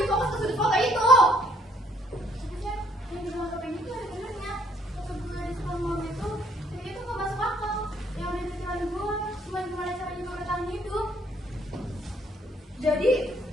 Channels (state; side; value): normal; both; correlation 0.66